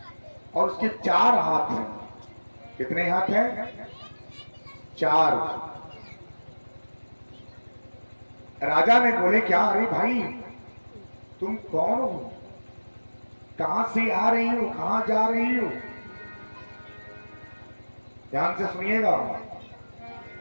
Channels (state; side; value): inverted; both; correlation -1.00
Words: और उसके 4 हाथ हैं। कितने हाथ हैं? 4। राजा ने बोले क्या, अरे भाई तुम कौन हो, कहां से आ रही हो, कहां जा रही हो? ध्यान से सुनिएगा।